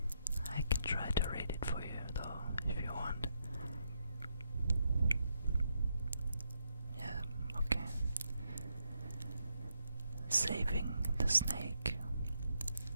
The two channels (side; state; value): both; inverted; correlation -0.79